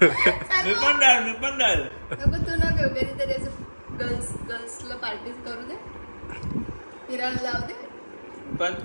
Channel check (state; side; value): inverted; both; correlation -1.00